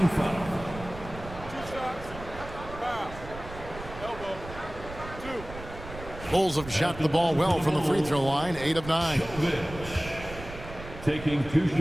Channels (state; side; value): noise; right; rumble, 13 dB below the sound